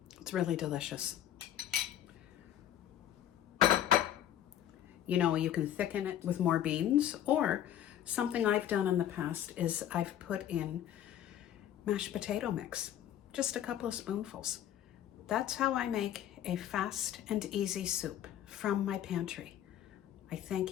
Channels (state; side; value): quieter; right; 11.1 dB